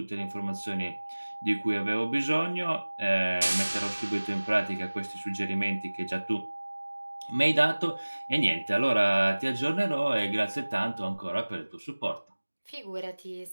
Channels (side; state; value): both; inverted; correlation -1.00